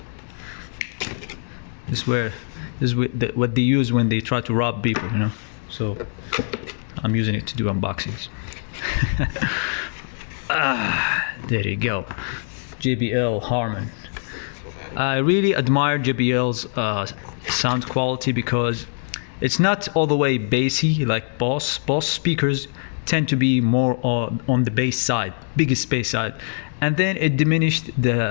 this is what they use when they try to rob people. So I'm using it to do unboxings. There you go. JBL Harman. I really admire JBL's sound quality because it's not all the way bassy like Boss. Boss speakers tend to be more on the bass side, biggest bass side, and then it diminished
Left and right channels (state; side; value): silent; right; digital silence